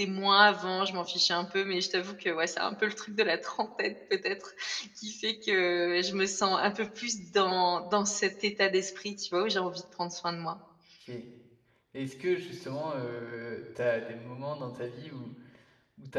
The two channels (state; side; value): identical; both; correlation 1.00